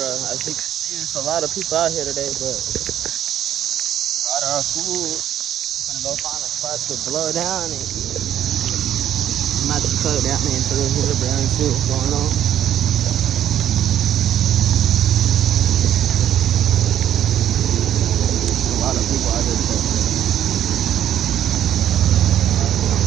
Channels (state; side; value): quieter; left; 10.7 dB